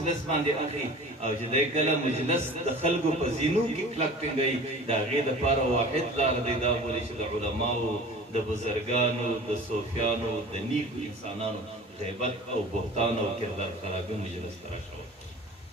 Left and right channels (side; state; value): both; normal; correlation 0.41